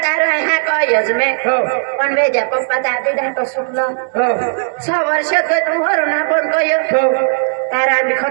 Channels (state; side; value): silent; left; digital silence